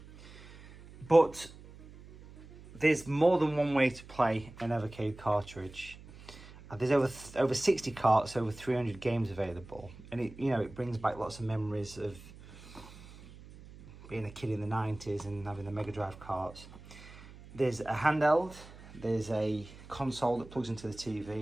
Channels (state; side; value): noise; right; hum, 18 dB below the sound